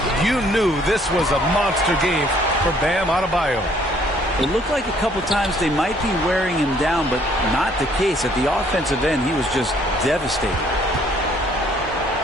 you knew this was a monster game for Bam Adebayo. It looked like a couple times they might be wearing him down, but not the case. At the offensive end, he was just devastating.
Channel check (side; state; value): both; normal; correlation 0.62